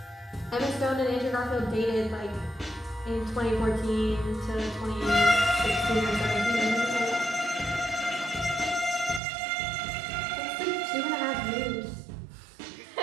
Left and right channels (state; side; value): drops out; left; at 9.2 s